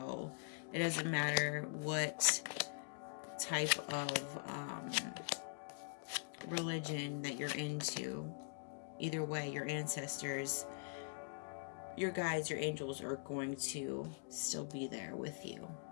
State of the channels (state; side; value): silent; right; digital silence